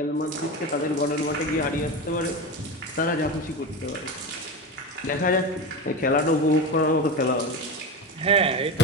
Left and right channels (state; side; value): normal; both; correlation 0.22